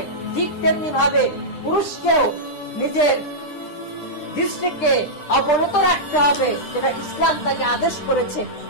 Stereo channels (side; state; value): right; late; 9.9 ms